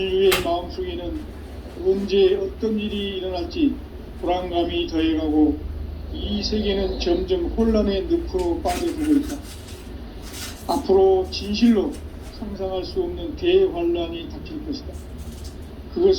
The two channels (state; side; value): identical; both; correlation 1.00